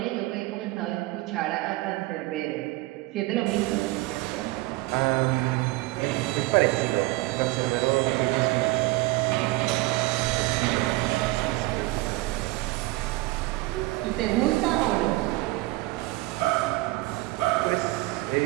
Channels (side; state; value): left; quieter; 20.3 dB